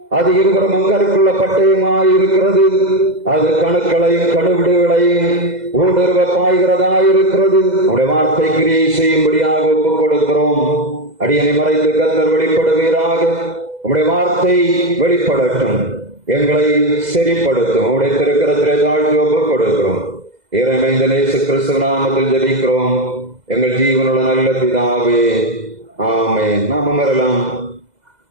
அது இருவரும் அங்கருக்குள்ள பட்டயமாய் இருக்கிறது. அது கணுக்களையும் கணுவிடுகளையும் ஊடுருவ பாய்கிறதாயிருக்கிறது. உம்முடைய வார்த்தை கிரியை செய்யும்படியாக ஒப்புக் கொடுக்கிறோம். அடியனை மறைத்து கர்த்தர் வெளிப்படுவீராக. உம்முடைய வார்த்தை வெளிப்படட்டும், எங்களை செறிப்படுத்தும். உம்முடைய திருக்கரத்திலே தாழ்த்தி ஒப்புக் கொடுக்கிறோம். இறைமைந்த இயேசு கிறிஸ்து நாமத்தில் ஜெபிக்கிறோம் எங்கள் ஜீவனுள்ள நல்ல பிதாவே, ஆமென். நாம் அமரலாம்.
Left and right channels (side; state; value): left; late; 2.0 ms